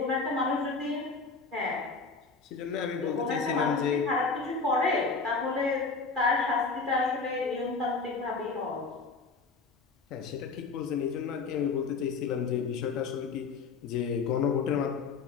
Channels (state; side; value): quieter; right; 4.5 dB